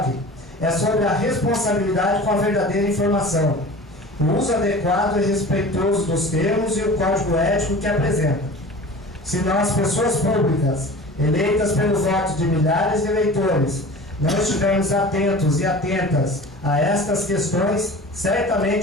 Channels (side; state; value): both; normal; correlation 0.39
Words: é sobre a responsabilidade com a verdadeira informação, o uso adequado e respeitoso dos termos e o código ético que apresenta. Se nós, pessoas públicas, eleitas pelo voto de milhares de eleitores, não estivermos atentos e atentas a estas questões,